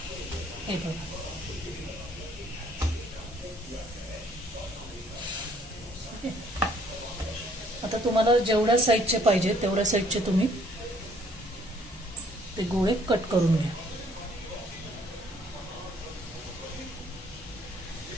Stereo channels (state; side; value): normal; both; correlation 0.63